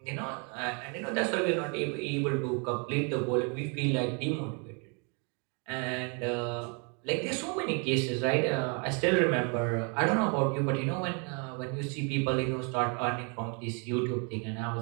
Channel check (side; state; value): left; quieter; 35.6 dB